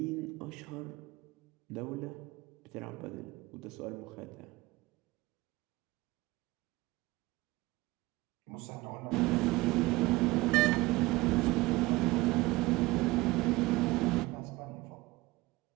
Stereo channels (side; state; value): left; quieter; 20.6 dB